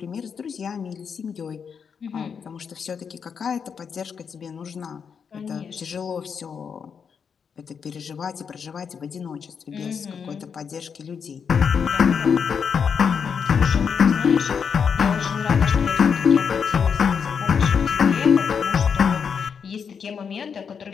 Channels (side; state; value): right; quieter; 6.6 dB